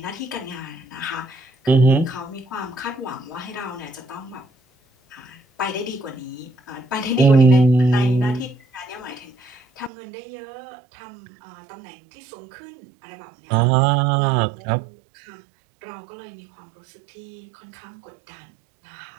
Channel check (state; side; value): drops out; left; at 9.9 s